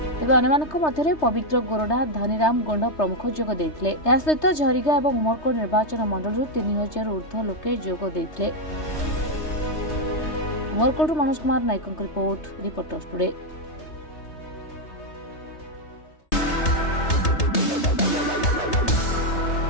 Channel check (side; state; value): right; late; 3.2 ms